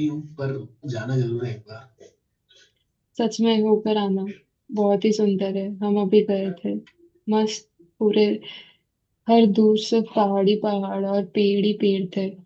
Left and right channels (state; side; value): identical; both; correlation 1.00